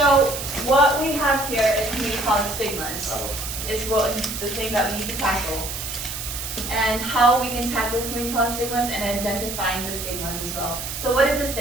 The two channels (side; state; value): right; noise; hiss, 6 dB below the sound